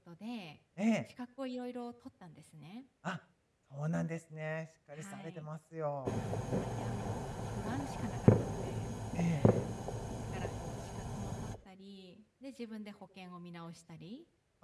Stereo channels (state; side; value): identical; both; correlation 1.00